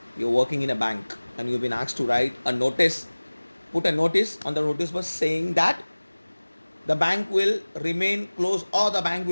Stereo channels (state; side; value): inverted; both; correlation -1.00